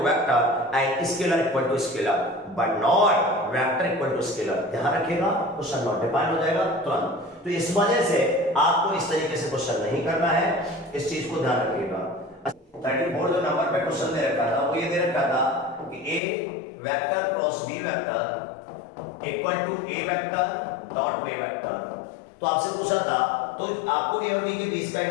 vector and scalar equal to scalar, but not vector equal to scalar. ध्यान रखिएगा क्वेश्चन नॉट डिफाइन हो जाएगा तुरंत। तो इस वजह से आपको इस तरीके से क्वेश्चन नहीं करना है, इस चीज को ध्यान रखिएगा। 34 जो नंबर पे क्वेश्चन दे रखा था वो ये दे रखा था कि A vector cross B vector equal to A vector dot B vector. तो आपसे पूछा था, तो आपको ए और बी के बीच का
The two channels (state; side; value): drops out; right; at 16.2 s